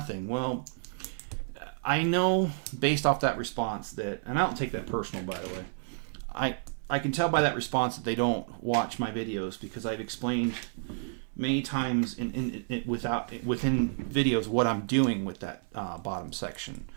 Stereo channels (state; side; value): silent; left; 57 dB below the other